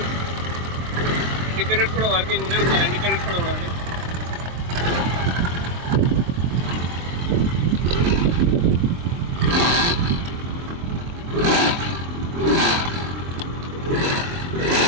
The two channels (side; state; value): left; late; 23 ms